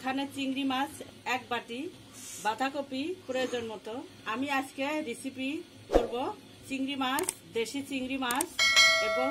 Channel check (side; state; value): both; identical; correlation 1.00